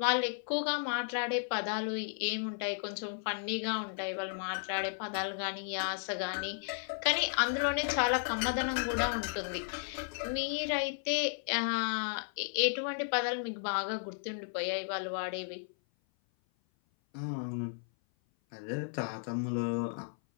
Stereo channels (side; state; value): right; silent; 55 dB below the other